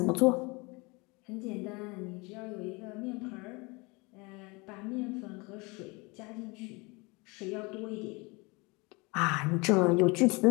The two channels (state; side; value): quieter; right; 27.2 dB